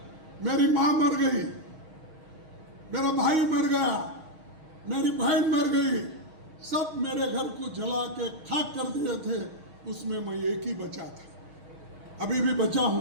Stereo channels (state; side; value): late; left; 6.4 ms